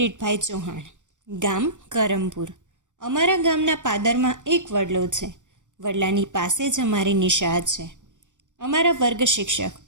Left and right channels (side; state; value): left; late; 0.85 ms